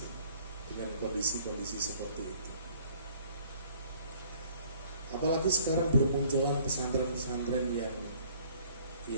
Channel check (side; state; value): both; inverted; correlation -0.56